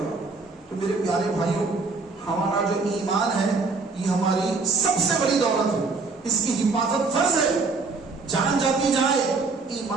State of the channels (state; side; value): quieter; left; 4.1 dB